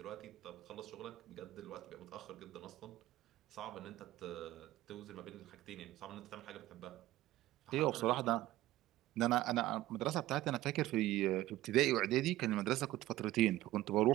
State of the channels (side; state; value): left; quieter; 15.9 dB